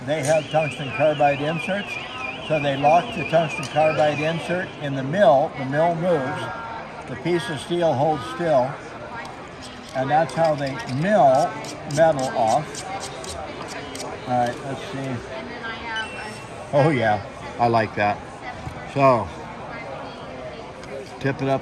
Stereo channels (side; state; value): both; identical; correlation 1.00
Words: they have tungsten carbide inserts. So they lock the tungsten carbide insert in the mill moves, the piece of steel holds still, And that's how they mill metal off. All right, let's see. Oh yeah, I like that. So, tip it